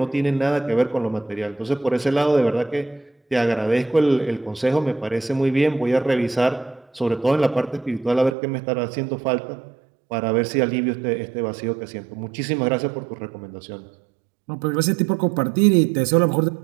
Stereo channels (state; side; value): drops out; left; at 8.3 s